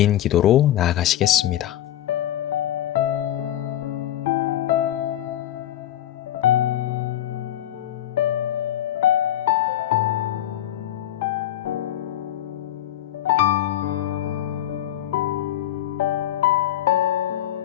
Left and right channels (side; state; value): right; quieter; 12.3 dB